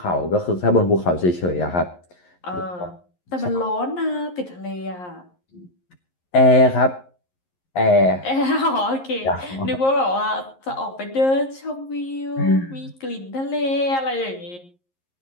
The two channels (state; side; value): late; right; 11 ms